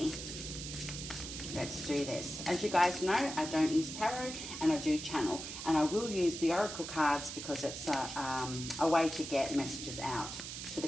Let's do this. As you guys know, I don't use tarot and I do channel. And I will use the oracle cards because it's a way to get messages out to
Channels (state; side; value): noise; right; hiss, 8 dB below the sound